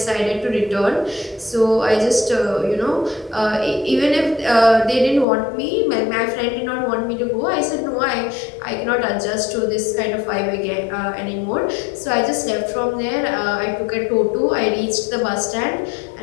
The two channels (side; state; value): right; drops out; at 5.2 s